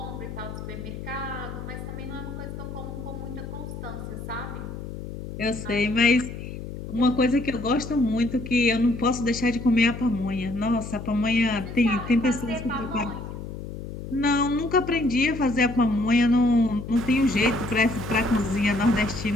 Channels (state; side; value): noise; left; hum, 9 dB below the sound